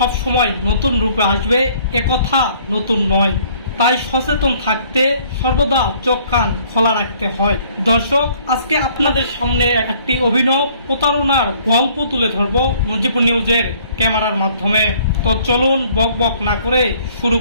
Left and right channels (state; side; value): inverted; both; correlation -0.59